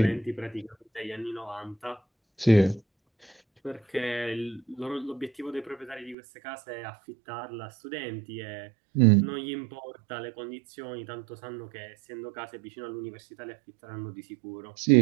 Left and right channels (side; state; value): left; drops out; at 6.2 s